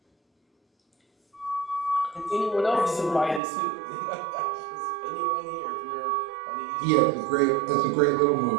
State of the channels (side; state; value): left; drops out; at 3.4 s